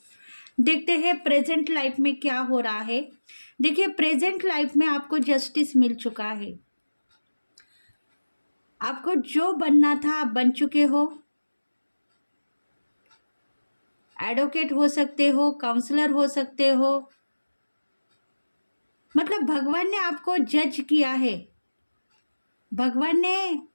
देखते हैं प्रेजेंट लाइफ में क्या हो रहा है। देखिए, प्रेजेंट लाइफ में आपको जस्टिस मिल चुका है। आपको जो बनना था आप बन चुके हो। एडवोकेट हो सकते हो, काउंसलर हो सकते हो, मतलब भगवान ने आपको जज किया है, भगवान ने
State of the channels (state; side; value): inverted; both; correlation -1.00